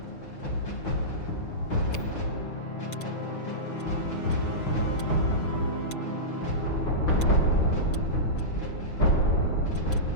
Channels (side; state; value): right; late; 6.1 ms